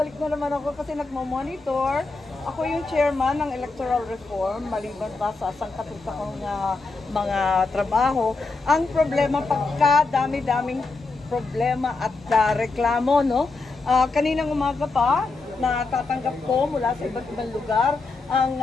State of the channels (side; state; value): right; quieter; 3.8 dB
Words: na naman ako kasi nagmo-monitor. Ako yung chairman ng electoral reform, maliban pa sa sangkatutak kong mga trabaho. Ang problema, pagka dami-daming problema at reklamo, no? Kaninang umaga pa, natatanggap ko mula sa iba't ibang lugar ang